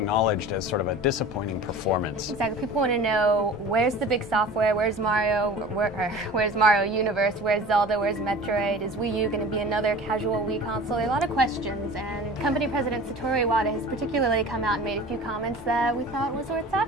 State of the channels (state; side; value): normal; both; correlation 0.39